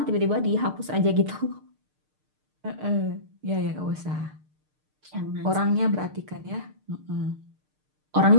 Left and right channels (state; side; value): late; left; 6.6 ms